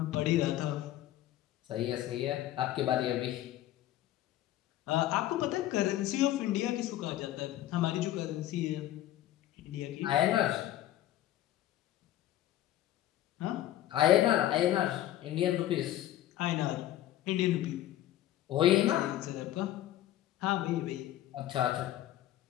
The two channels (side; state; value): right; quieter; 13.4 dB